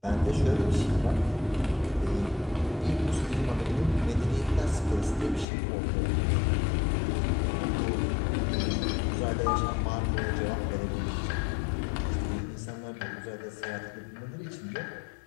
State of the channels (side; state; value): right; drops out; at 5.5 s